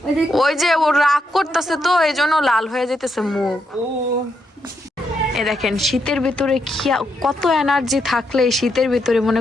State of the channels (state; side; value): normal; both; correlation 0.80